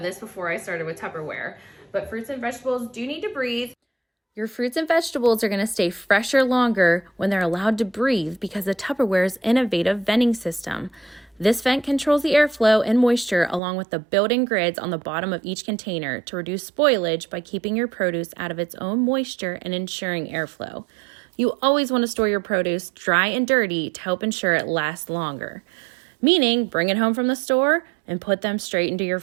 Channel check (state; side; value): drops out; left; at 13.6 s